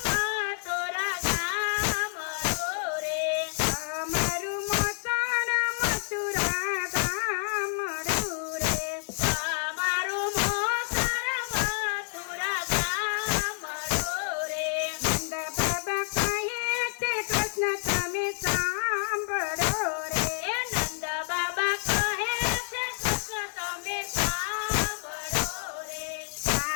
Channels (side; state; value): right; silent; 59 dB below the other